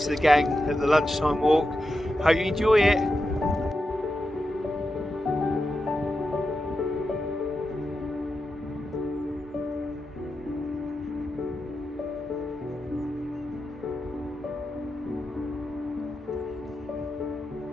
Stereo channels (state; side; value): normal; both; correlation 0.89